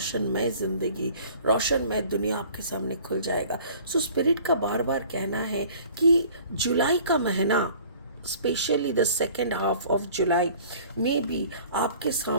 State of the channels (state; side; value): inverted; both; correlation -0.50